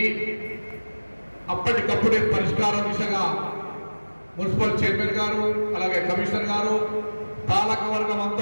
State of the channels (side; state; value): both; inverted; correlation -1.00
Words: అప్పటికప్పుడే పరిష్కార దిశగా మున్సిపల్ చైర్మన్ గారు అలాగే కమిషనర్ గారు పాలక వర్గం